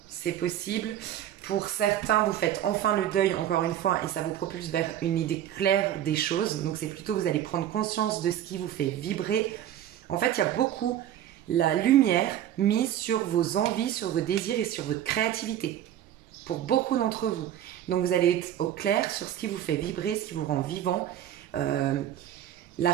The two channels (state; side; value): quieter; left; 11.3 dB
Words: C'est possible. Pour certains, vous faites enfin le deuil, encore une fois, et ça vous propulse vers une idée claire des choses. Donc, c'est plutôt, vous allez prendre conscience de ce qui vous fait vibrer. En fait, il y a beaucoup la lumière mise sur vos envies, sur vos désirs et sur votre créativité. Pour beaucoup d'entre vous. Donc, vous allez être au clair sur ce qui vous fait vibrer, ce qui vous rend vivant. La